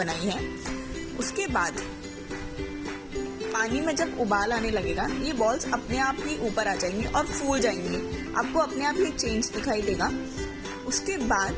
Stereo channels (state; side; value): identical; both; correlation 1.00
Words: है। उसके बाद पानी में जब उबाल आने लगेगा, ये बॉल्स अपने आप ही ऊपर आ जाएंगी और फूल जाएंगी। आपको अपने आप ही चेंज दिखाई देगा। उसके